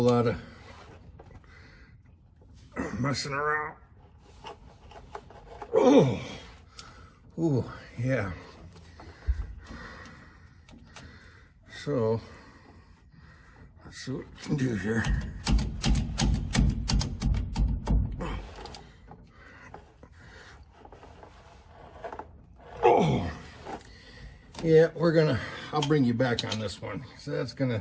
lot of messing around. Oh, yeah. So let's see what we can do here. Oh, yeah, I'll bring you back on this one. So that's gonna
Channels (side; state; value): both; identical; correlation 1.00